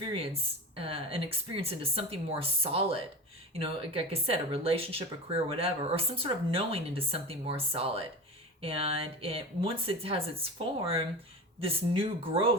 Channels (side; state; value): both; normal; correlation 0.28